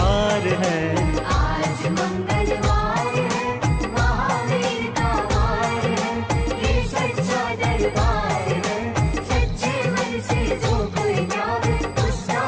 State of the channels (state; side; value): identical; both; correlation 1.00